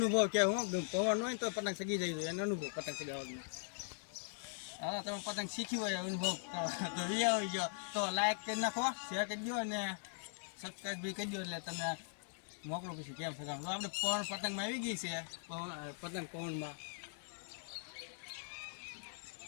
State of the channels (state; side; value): silent; right; digital silence